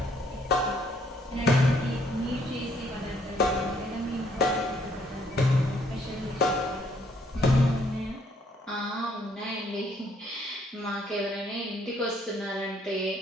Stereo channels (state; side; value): normal; both; correlation 0.67